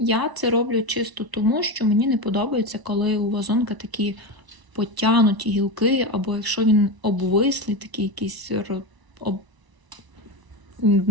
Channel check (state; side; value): late; left; 1.0 ms